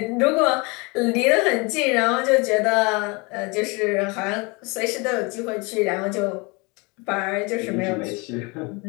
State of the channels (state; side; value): quieter; right; 28.1 dB